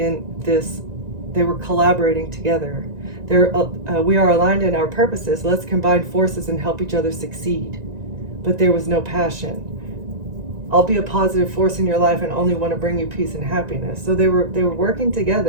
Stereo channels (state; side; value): late; left; 1.9 ms